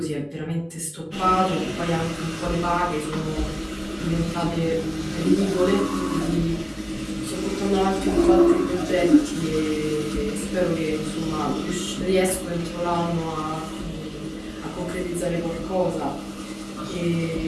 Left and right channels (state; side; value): identical; both; correlation 1.00